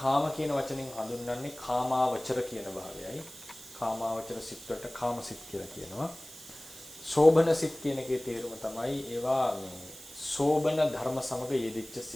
කියන වචනෙන් හඳුන්වන්නේ කාමාවචර කියන භාවයයි. කාමාවචර සිත් වලට කාම සිත් කියලා කියනවා. සෝබන සිත් කියන එකේ තේරුම තමයි ඒවා මේ සෝබන ධර්ම සමග යෙදිච්ච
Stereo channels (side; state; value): right; noise; hiss, 16 dB below the sound